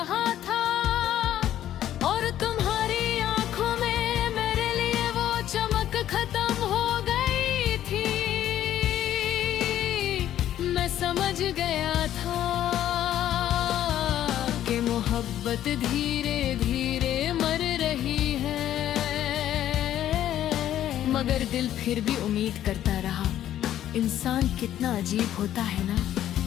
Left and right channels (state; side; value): quieter; right; 11.8 dB